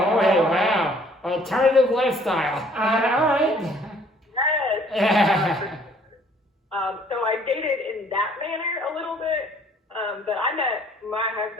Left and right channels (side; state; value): both; normal; correlation 0.59